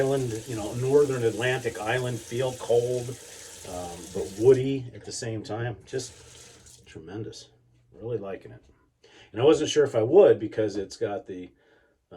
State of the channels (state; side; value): identical; both; correlation 1.00